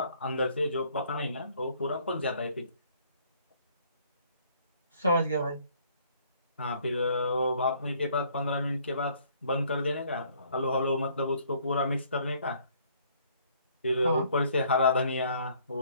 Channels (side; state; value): both; inverted; correlation -0.62